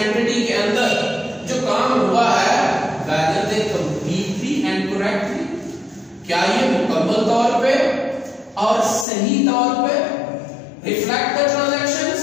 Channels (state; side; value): drops out; right; at 9.1 s